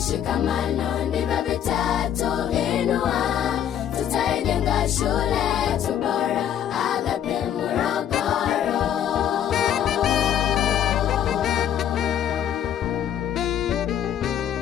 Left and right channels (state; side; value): quieter; right; 10.0 dB